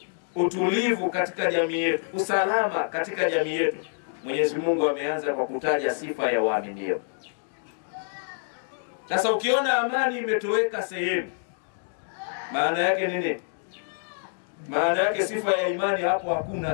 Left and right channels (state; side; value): silent; right; digital silence